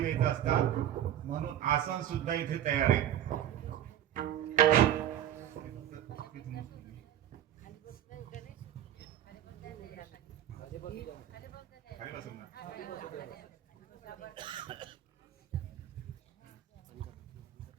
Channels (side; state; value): left; quieter; 11.3 dB